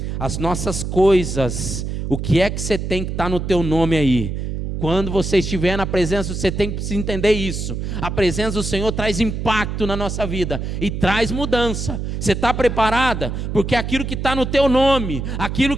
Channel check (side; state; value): right; noise; hum, 4 dB below the sound